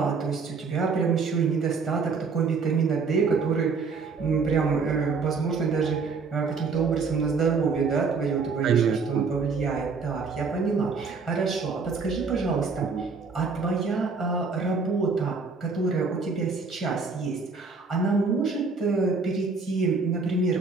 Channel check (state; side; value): quieter; left; 4.7 dB